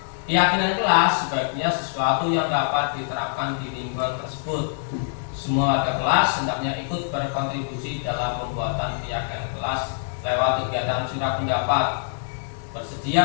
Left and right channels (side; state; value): right; silent; 62 dB below the other